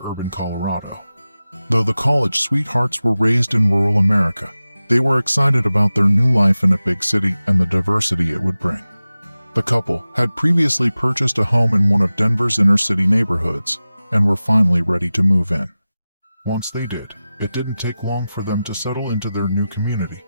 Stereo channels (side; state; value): both; inverted; correlation -0.95